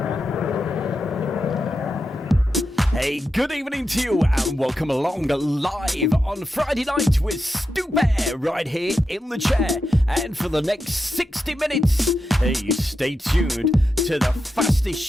Good evening to you and welcome along live on Friday night with Stu Bear right here in the chair. And for the next 60 minutes, hey, stay tuned to the fastest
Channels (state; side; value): normal; both; correlation 0.88